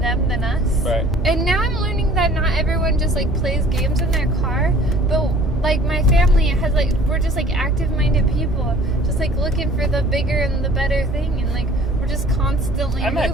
than us. Right. And now I'm learning that not everyone just, like, plays games in their car, but... Like, my family has, like, we're just, like, active-minded people. Just, like, looking for the bigger and the better thing. And, like, we're just constantly I'm moving.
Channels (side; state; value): both; normal; correlation 0.51